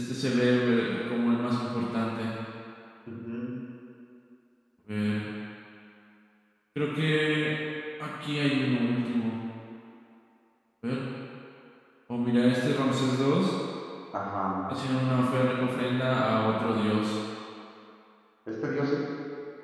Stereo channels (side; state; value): both; identical; correlation 1.00